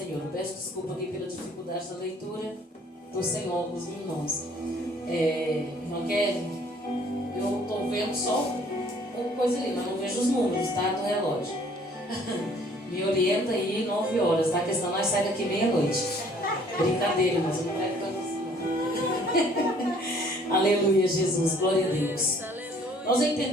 Peço desculpa aqui pela dificuldade da leitura. Estou sem óculos, irmãos. Irmã Kelly, eu estou vendo só uma coisa ali, mas não vejo os números, tá? Do relógio. Me orienta aí 9 horas, tá? Porque senão nós saímos daqui meia-noite. Brincadeira, mas eu não quero tanto assim, não. Aleluia, Jesus, glória a Deus. Nós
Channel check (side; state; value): both; normal; correlation 0.58